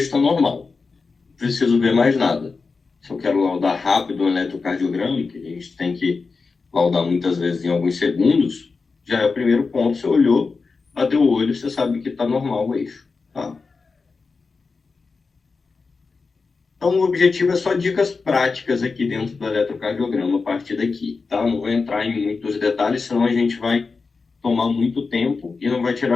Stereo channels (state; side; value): quieter; right; 4.5 dB